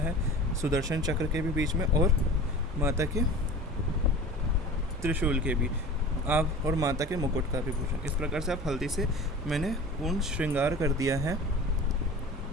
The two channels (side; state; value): both; normal; correlation 0.38